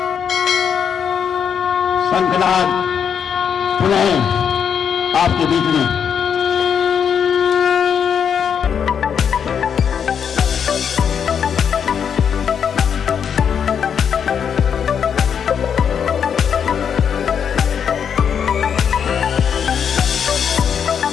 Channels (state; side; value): quieter; right; 7.6 dB